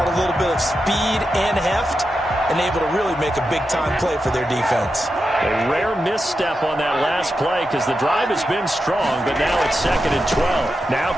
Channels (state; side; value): normal; both; correlation 0.88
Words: a little bit of speed and heft, and able to really make a big-time play for their defense. A rare misstep on that last play because the drive has been strong, but now it's 2nd and 12. Now